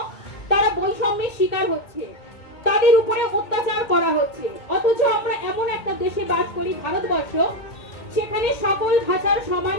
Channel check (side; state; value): right; late; 2.2 ms